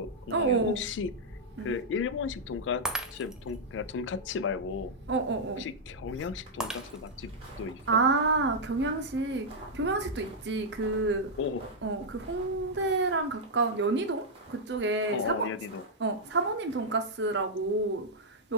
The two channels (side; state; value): both; normal; correlation -0.04